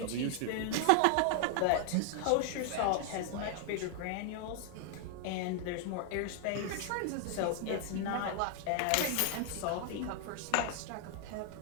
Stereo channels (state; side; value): different; both; correlation 0.00